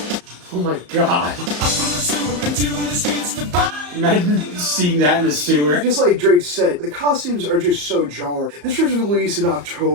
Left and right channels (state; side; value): late; left; 34 ms